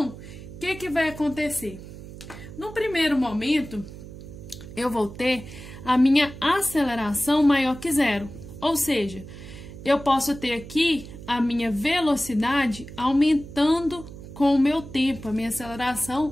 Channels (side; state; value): right; noise; hum, 14 dB below the sound